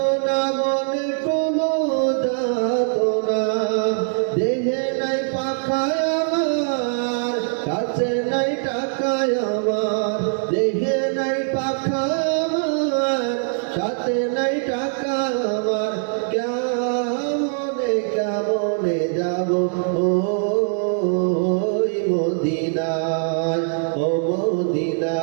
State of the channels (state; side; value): silent; left; digital silence